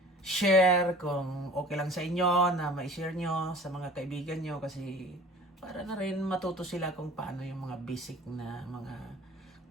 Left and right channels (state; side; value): normal; both; correlation 0.46